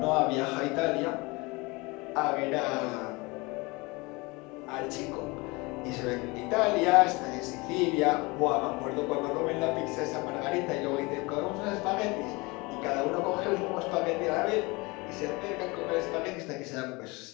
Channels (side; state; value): right; quieter; 25.2 dB